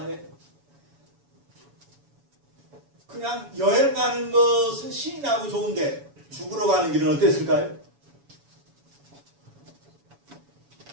그냥 여행 가는 것은 신이 나고 좋은데 죽으러 가는 길은 어땠을까요?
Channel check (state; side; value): late; left; 7.1 ms